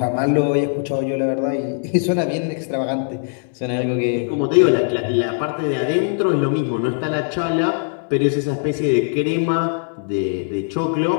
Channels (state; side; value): silent; right; 65 dB below the other